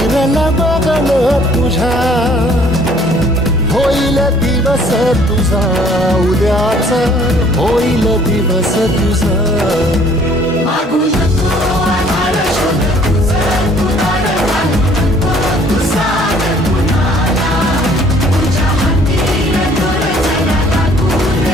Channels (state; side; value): normal; both; correlation 0.58